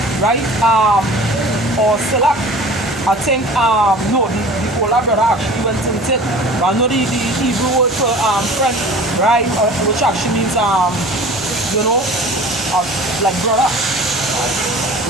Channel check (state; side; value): normal; both; correlation 0.42